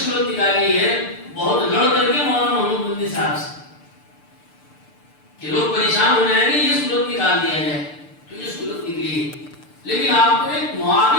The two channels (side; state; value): right; late; 6.8 ms